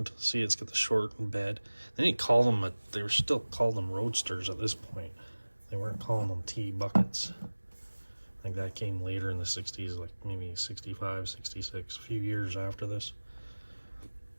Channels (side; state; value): both; inverted; correlation -1.00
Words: See, it's got the shortened bed. Then you call them they were still called them roadsters at this point. They weren't calling them T buckets. I think that came later in the 60s, like maybe 65, 66, a few years after this.